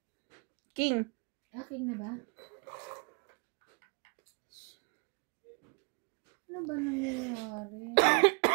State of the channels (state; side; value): quieter; left; 33.5 dB